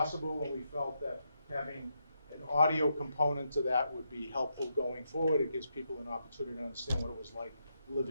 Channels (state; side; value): inverted; both; correlation -0.81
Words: and we felt that having an audio component to that would be helpful going forward. It gives people an opportunity to understand what it was like